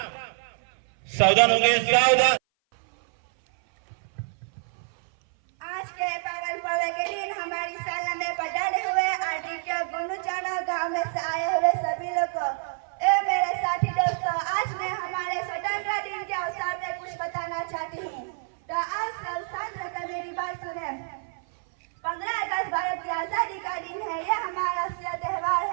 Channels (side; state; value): left; silent; 57 dB below the other